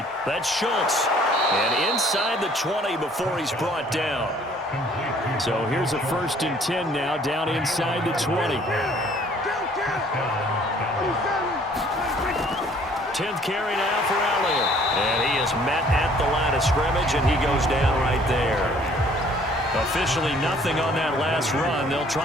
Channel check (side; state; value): both; normal; correlation 0.58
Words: That's Schultz. And inside the 20 before he's brought down. So here's a 1st and 10 now, down inside the 20. 10th carry now for Elliott. And he is met at the line of scrimmage, and he goes down right there. Officially nothing on that last run. They'll